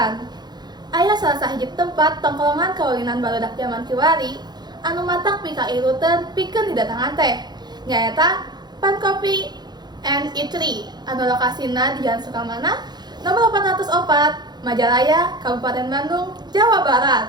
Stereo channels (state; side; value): late; left; 0.20 ms